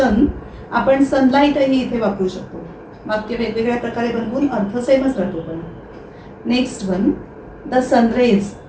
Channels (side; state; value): both; identical; correlation 1.00